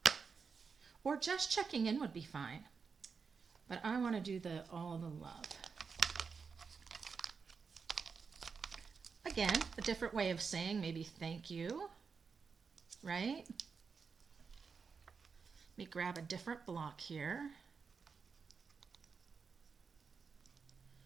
Or just checking in would be fine. But I want to do the "all the love." Again, a different way of saying maybe thank you, right? Let me grab a different block here.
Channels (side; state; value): left; quieter; 5.5 dB